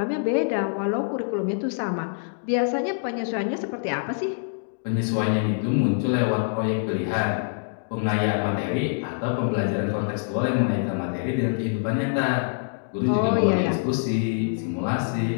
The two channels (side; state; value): right; silent; digital silence